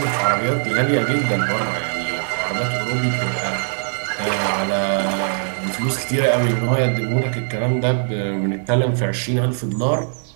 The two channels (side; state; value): left; silent; digital silence